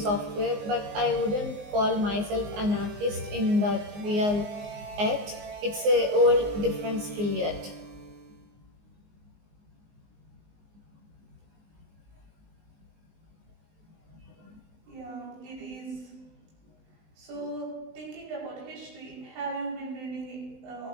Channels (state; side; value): late; left; 19 ms